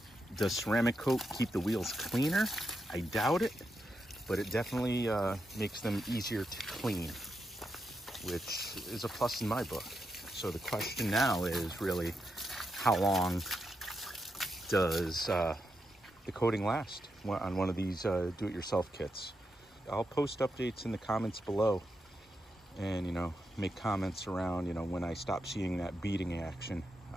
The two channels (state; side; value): normal; both; correlation 0.85